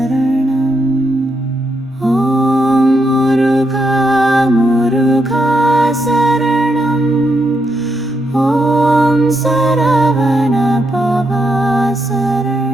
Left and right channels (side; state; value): both; normal; correlation 0.81